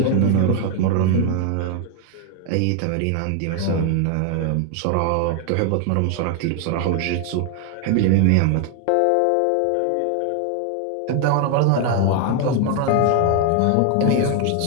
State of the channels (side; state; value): both; different; correlation 0.01